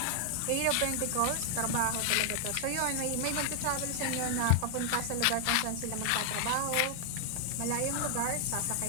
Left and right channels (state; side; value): different; both; correlation 0.00